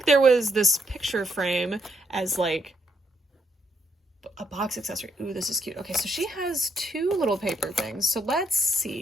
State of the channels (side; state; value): both; normal; correlation 0.75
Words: there was this picture frame as like a box accessory. Ooh, this is cute. Okay, so she has 2 little paper things. So let's